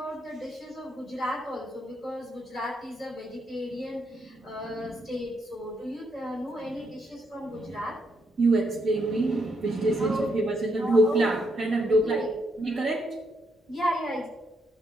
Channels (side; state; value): both; normal; correlation 0.77